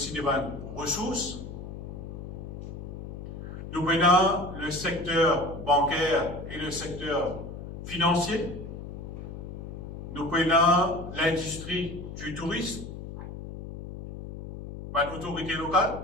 des ressources. Nous prenons le secteur bancaire et le secteur financier. Nous prenons l'industrie du tourisme, l'autorité locale,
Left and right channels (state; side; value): noise; left; hum, 10 dB below the sound